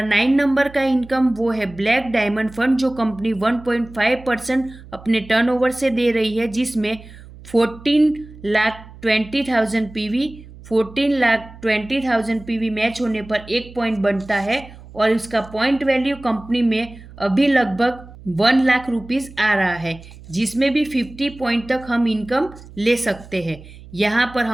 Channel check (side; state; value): right; noise; hum, 19 dB below the sound